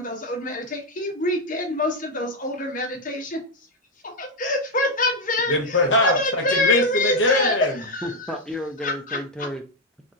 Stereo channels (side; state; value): both; normal; correlation 0.04